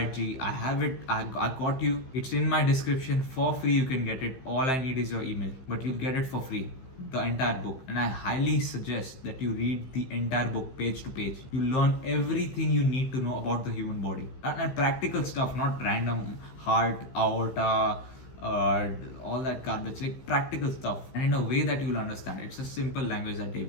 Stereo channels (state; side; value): late; right; 15 ms